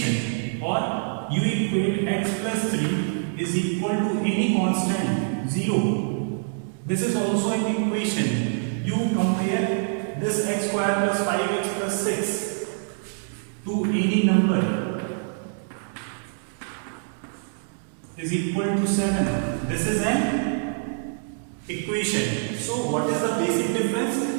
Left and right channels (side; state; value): left; silent; digital silence